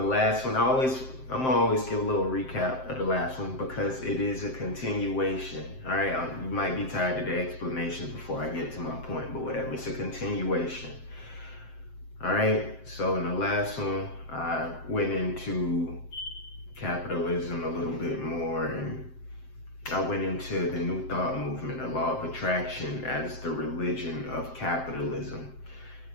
one, I'm gonna always give a little recap of the last one because it is a continuation. All right, you might be tired of the explanations before I get to my point, but whatever. It's a continuation. All right. So in the last one, I went into capitalism a little bit more and I went into the New Thought movement, the law of attraction, as the religion of capitalism.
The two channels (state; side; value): late; right; 7.7 ms